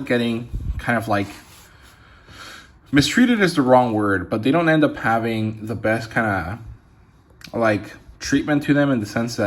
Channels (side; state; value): both; identical; correlation 1.00